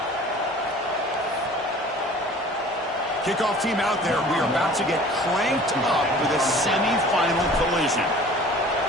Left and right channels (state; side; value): normal; both; correlation 0.46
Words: Kickoff team out there. We are about to get cranked up with a semi-final collision.